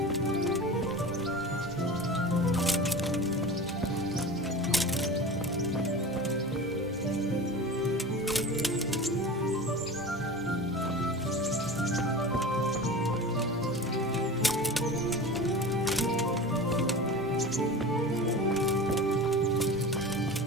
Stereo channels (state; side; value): normal; both; correlation 0.33